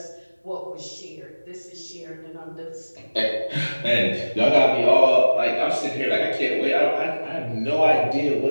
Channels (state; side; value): inverted; both; correlation -1.00